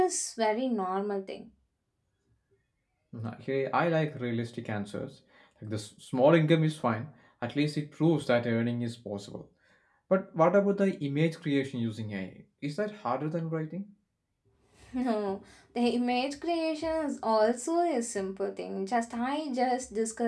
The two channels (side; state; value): both; identical; correlation 1.00